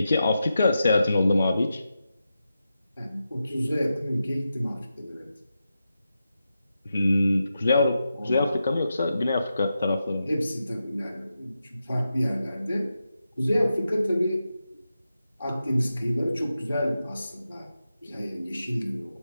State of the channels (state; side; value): inverted; both; correlation -0.89